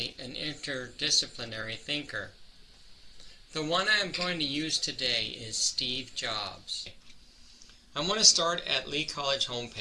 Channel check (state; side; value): identical; both; correlation 1.00